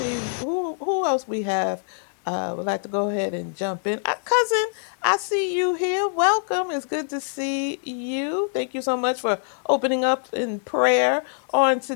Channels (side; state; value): right; silent; digital silence